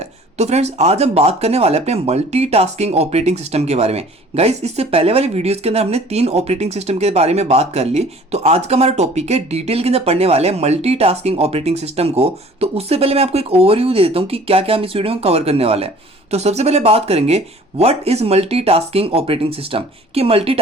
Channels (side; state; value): both; normal; correlation 0.50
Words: तो फ्रेंड्स, आज हम बात करने वाले हैं अपने मल्टीटास्किंग ऑपरेटिंग सिस्टम के बारे में। गाइस, इससे पहले वाली वीडियोस के अंदर हमने 3 ऑपरेटिंग सिस्टम के बारे में बात कर ली। तो आज का हमारा टॉपिक है, डिटेल के अंदर पढ़ने वाले हैं मल्टीटास्किंग ऑपरेटिंग सिस्टम को। तो उससे पहले मैं आपको एक ओवरव्यू दे देता हूँ कि क्या क्या हम इस वीडियो में कवर करने वाले हैं। तो सबसे पहले बात करेंगे what is multitasking operating system, कि